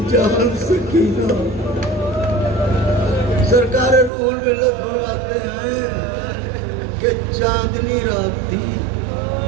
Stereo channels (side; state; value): left; drops out; at 4.1 s